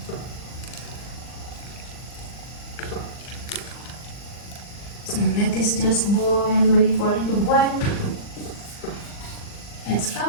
So let this just boil, wait for it to boil. Let's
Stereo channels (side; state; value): right; late; 39 ms